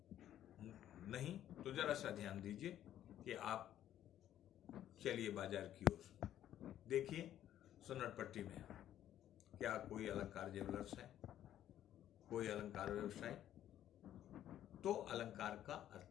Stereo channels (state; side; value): quieter; right; 11.6 dB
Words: नहीं तो जरा सा ध्यान दीजिए कि आप चलिए बाजार की ओर देखिए, सुन्नरपट्टी में क्या कोई अलंकार ज्वेलर्स है, कोई अलंकार व्यवसाय? तो अलंकार का